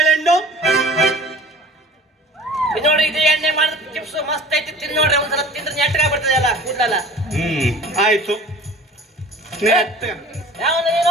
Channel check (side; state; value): both; normal; correlation 0.44